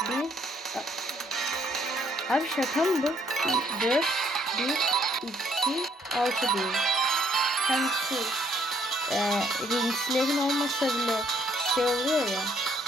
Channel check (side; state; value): both; normal; correlation 0.67